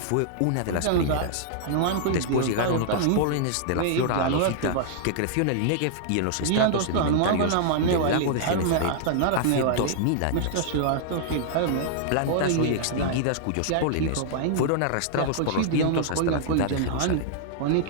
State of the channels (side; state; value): both; different; correlation -0.01